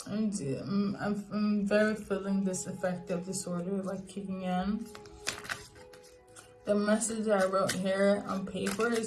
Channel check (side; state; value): both; identical; correlation 1.00